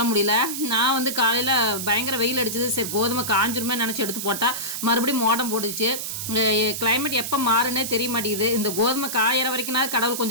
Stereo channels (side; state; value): right; noise; hiss, 5 dB below the sound